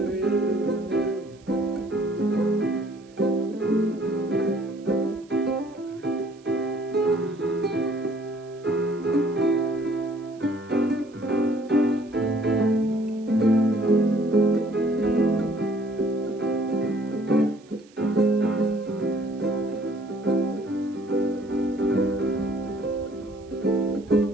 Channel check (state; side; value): noise; right; hiss, 29 dB below the sound